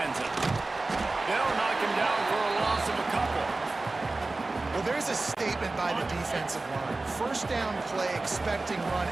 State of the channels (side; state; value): left; quieter; 3.2 dB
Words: They'll knock him down for a loss of a couple. Well, there's a statement by the defensive line. First down play, expecting run,